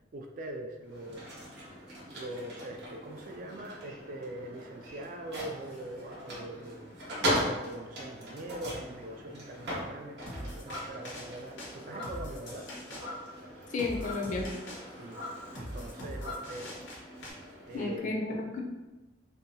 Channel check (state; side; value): normal; both; correlation 0.28